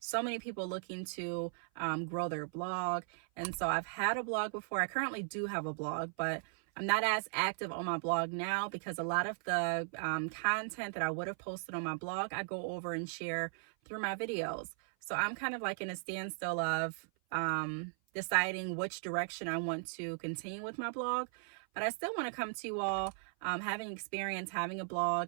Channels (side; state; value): left; silent; 53 dB below the other